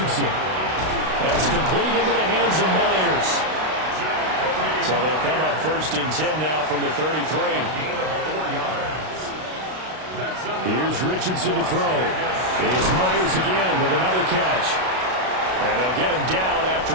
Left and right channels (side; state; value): left; late; 32 ms